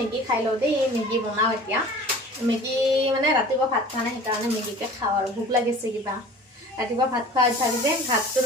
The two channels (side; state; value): both; normal; correlation 0.43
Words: খাই লওঁ দেই, মেগী বনাওঁ এতিয়া। মেগী মানে ৰাতিপুৱা ভাত খোৱা নাই, সেইকাৰণে মেগীকে খাওঁ আৰু ভোক লাগিছে কিবা। ৰাতিপুৱা ভাত খোৱা অভ্যাস যে, ভাতটো